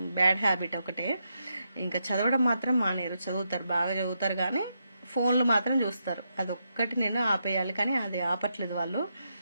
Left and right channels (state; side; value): inverted; both; correlation -0.83